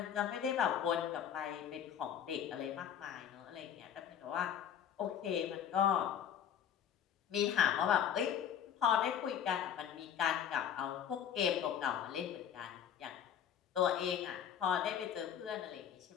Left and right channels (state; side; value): quieter; right; 8.9 dB